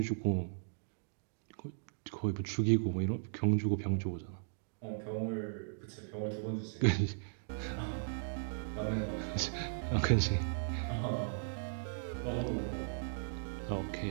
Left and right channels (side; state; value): left; silent; digital silence